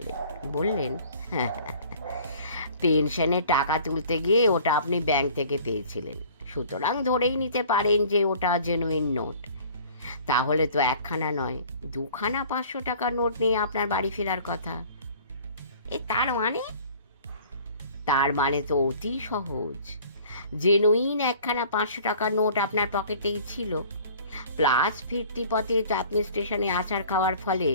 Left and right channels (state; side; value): inverted; both; correlation -0.49